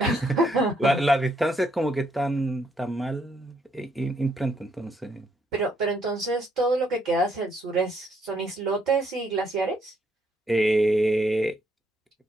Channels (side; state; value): both; normal; correlation 0.72